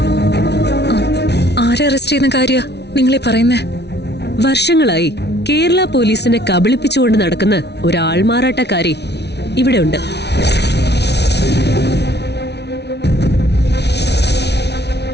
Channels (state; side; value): late; right; 0.49 ms